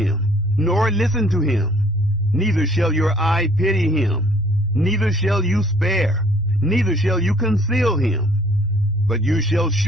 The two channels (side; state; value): both; normal; correlation 0.58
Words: nor listen to him, neither shall your eye pity him, neither shall you spare, neither shall you conceal him, but you shall